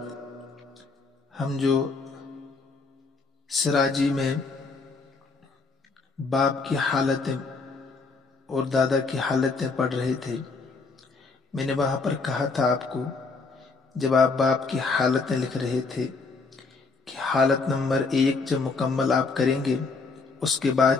ہم جو سراجی میں باپ کی حالتیں اور دادا کی حالتیں پڑھ رہے تھے، میں نے وہاں پر کہا تھا آپ کو، جب آپ باپ کی حالتیں لکھ رہے تھے کہ حالت نمبر 1 جب مکمل آپ کریں گے اس کے بعد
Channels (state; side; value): quieter; right; 4.2 dB